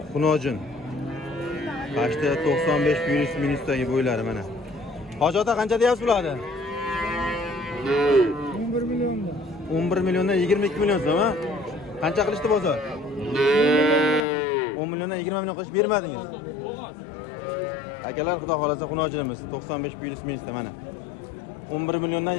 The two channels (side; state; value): right; drops out; at 14.2 s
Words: xunojin. Qashda 95 virus minusdagi bo'ylari mana. Hoji ota qancha deyapsiz bularni? 11 million. 11 milliondan 22 million so'm, ha? Qancha qilishdi bozor? 10 milliondan 20 million qilish bermadingiz. Akalar, xudo xolasa xunojinimiz 95 virus minusda mana. 11 milliondan